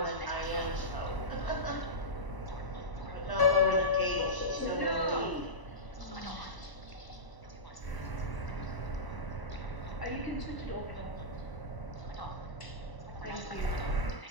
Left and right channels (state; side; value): late; right; 1.0 ms